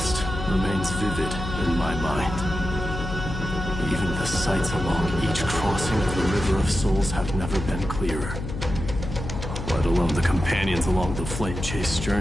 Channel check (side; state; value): left; noise; hum, 6 dB below the sound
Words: remains vivid in my mind. Even the sights along each crossing of the River of Souls have never been clearer. Let alone the companions along the Flame Chase